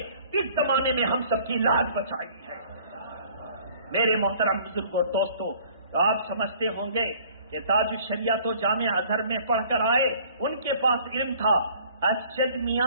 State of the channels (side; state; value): both; inverted; correlation -0.54